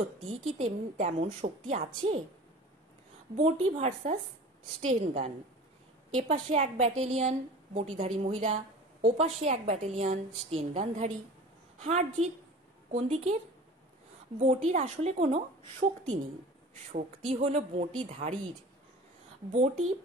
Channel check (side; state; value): both; normal; correlation 0.40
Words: কি তেমন শক্তি আছে? বঁটি ভার্সাস স্টেন গান। এপাশে এক ব্যাটালিয়ন বঁটিধারী মহিলা, ওপাশে এক ব্যাটালিয়ন স্টেন গানধারী। হার জিত কোন দিকের? বঁটির আসলে কোনো শক্তি নেই, শক্তি হলো বঁটিধারীর। বঁটি